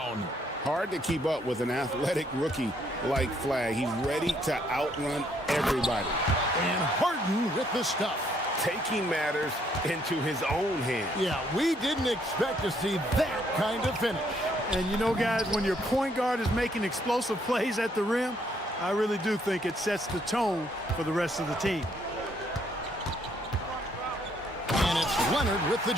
Hard to keep up with an athletic rookie like Flag. He's ready to outrun everybody. And Harden with the stuff. Taking matters into his own hands. Yeah, we didn't expect to see that kind of finish. And you know, guys, when your point guard is making explosive plays at the rim, I really do think it sets the tone for the rest of the team. And it's Leonard with the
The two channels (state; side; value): normal; both; correlation 0.69